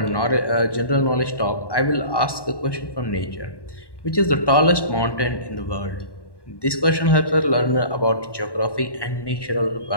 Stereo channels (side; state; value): right; late; 1.1 ms